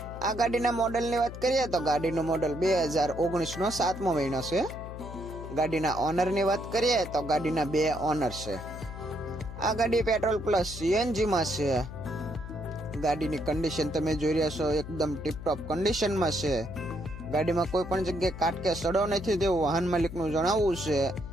આ ગાડીના મોડલની વાત કરીએ તો ગાડીનું મોડલ 2019 નો 7મો મહિનો છે. ગાડીના ઓનરની વાત કરીએ તો ગાડીના 2 ઓનર છે. આ ગાડી પેટ્રોલ પ્લસ સીએનજી માં છે. ગાડીની કન્ડિશન તમે જોઈ રહ્યા છો, એકદમ ટીપટોપ કન્ડિશનમાં છે. ગાડીમાં કોઈ પણ જગ્યાએ કાટ કે સડો નથી તેવું વાહન માલિકનું જણાવવું છે.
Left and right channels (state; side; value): noise; left; hum, 11 dB below the sound